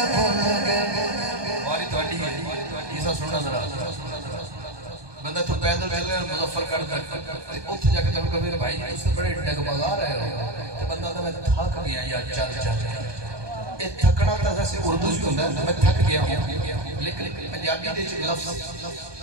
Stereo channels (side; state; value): left; late; 1.2 ms